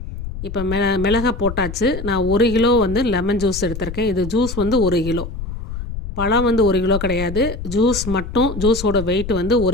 இப்போ மிளகை போட்டாச்சு. நான் 1 கிலோ லெமன் ஜூஸ் எடுத்திருக்கேன். இது ஜூஸ் 1 கிலோ. பழம் 1 கிலோ கிடையாது. ஜூஸ் மட்டும், ஜூஸோட வெயிட்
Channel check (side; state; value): left; noise; rumble, 8 dB below the sound